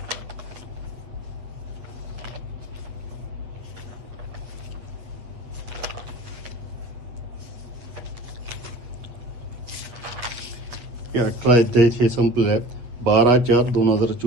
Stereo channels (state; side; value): late; left; 8.4 ms